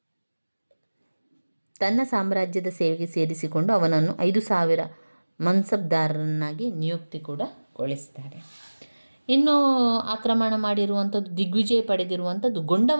ತನ್ನ ಸಾಮ್ರಾಜ್ಯದ ಸೇವೆಗೆ ಸೇರಿಸಿಕೊಂಡು ಅವನನ್ನು 5,000 ಮನ್ಸಬ್ದಾರರನ್ನಾಗಿ ನಿಯುಕ್ತಿ ಕೂಡ ಗೊಳಿಸ್ತಾರೆ. ಇನ್ನು ಆಕ್ರಮಣ ಮಾಡಿರುವಂಥದ್ದು, ದಿಗ್ವಿಜಯ ಪಡೆದಿರುವಂಥದ್ದು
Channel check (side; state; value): both; inverted; correlation -1.00